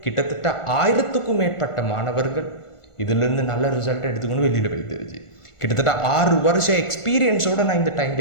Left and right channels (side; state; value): right; late; 1.4 ms